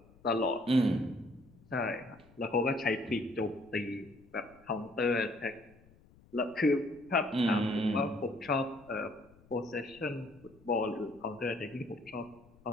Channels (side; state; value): left; noise; rumble, 26 dB below the sound